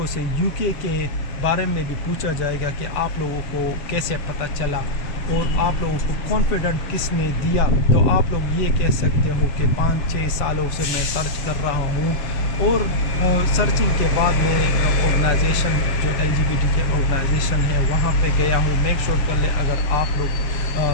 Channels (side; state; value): right; late; 6.9 ms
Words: سے یو کے بارے میں بھی پوچھا جائے گا کہ آپ لوگوں کو کیسے پتہ چلا اور آپ لوگوں کو کانفیڈنٹ کس نے دیا؟ تو آپ لوگ یہ کہہ سکتے ہو کہ 5-6 سالوں سے میں سرچ کر رہا ہوں اور سرچنگ کے بعد میں آرگنائزیشن جو LGBT کے آرگنائزیشن ہے وہاں پہ گیا ہوں۔ میک شور کر لے اگر آپ